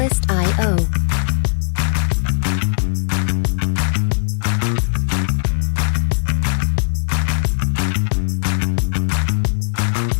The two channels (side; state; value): right; silent; digital silence